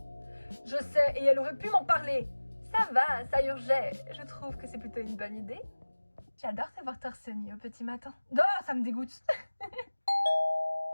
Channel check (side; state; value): both; inverted; correlation -1.00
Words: Je sais, et elle aurait pu m'en parler. Ça va, ça urgeait. Je trouve que c'est plutôt une bonne idée. J'adore te voir torse nu au petit matin. Oh, ça me dégoûte.